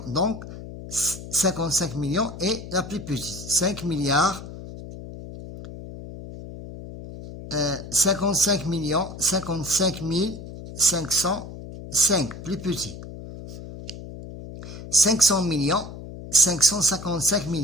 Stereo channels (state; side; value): noise; left; hum, 12 dB below the sound